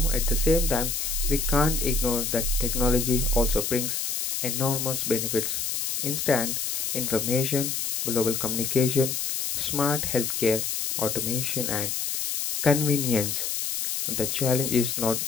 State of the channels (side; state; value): left; noise; hiss, 1 dB below the sound